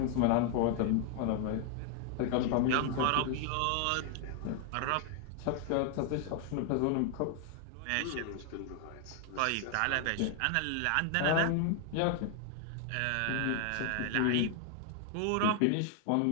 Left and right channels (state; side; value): different; both; correlation 0.00